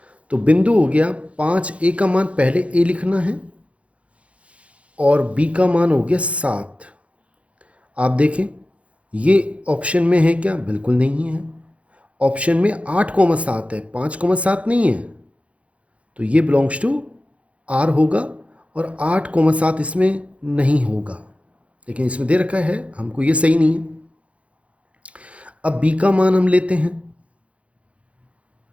तो बिंदु हो गया 5। a का मान पहले a लिखना है और b का मान हो गया 7। आप देखें ये ऑप्शन में है क्या? बिल्कुल नहीं है। ऑप्शन में 8,7 है, 5,7 नहीं है। तो ये बिलोंग्स टू आर होगा और 8,7 इसमें नहीं होगा, लेकिन इसमें दे रखा है हमको, ये सही नहीं है। अब b का मान हम लेते हैं।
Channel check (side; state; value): left; late; 0.063 ms